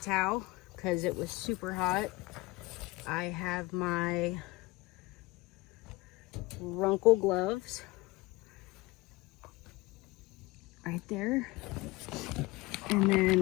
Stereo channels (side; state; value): right; quieter; 21.5 dB